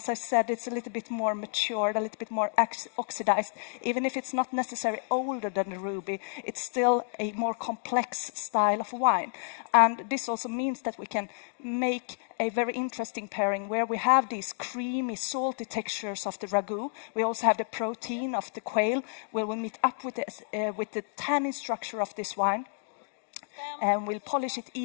I said, it's a little bit more matured, a little bit more oxidized. Even if it's not necessarily older than the ruby, it's still a more complex style of wine. And this also means that we can make a very interesting pairing where we have these creamy, salty textures of the ragu. We also have the protein of the quail, where we meet up with the tannin structure of this wine. And we'll polish it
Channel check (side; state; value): right; silent; 58 dB below the other